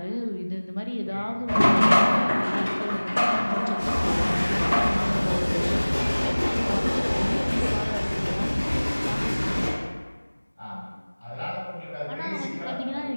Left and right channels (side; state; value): both; inverted; correlation -1.00